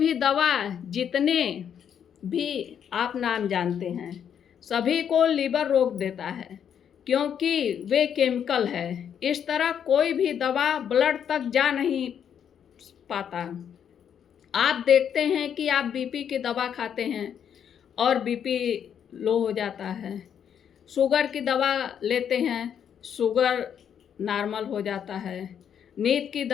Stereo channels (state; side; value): quieter; right; 8.5 dB